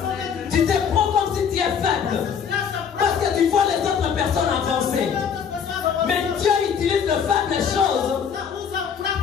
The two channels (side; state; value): right; quieter; 7.2 dB